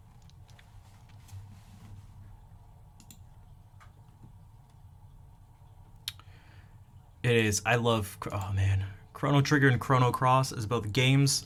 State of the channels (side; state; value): both; identical; correlation 1.00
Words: It is. I love, oh man. Chrono Trigger and Chrono Cross as both games